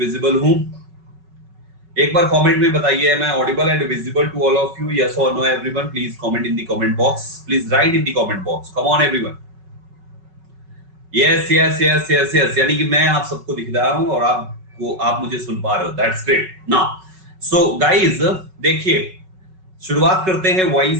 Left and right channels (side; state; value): left; late; 5.3 ms